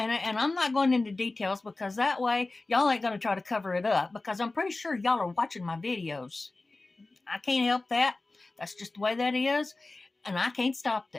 I'm not going into details because that way y'all ain't going to try to cover it up, because I'm pretty sure y'all are watching my videos. I can't help that. That's just the way that is. And I can't stop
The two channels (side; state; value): right; quieter; 3.2 dB